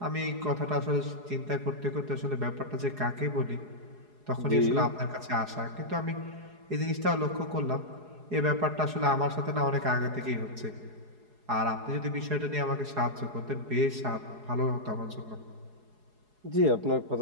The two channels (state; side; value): late; left; 4.8 ms